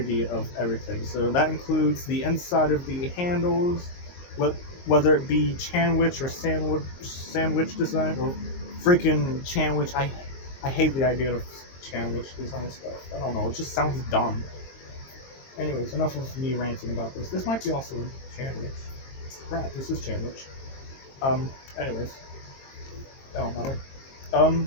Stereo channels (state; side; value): late; right; 22 ms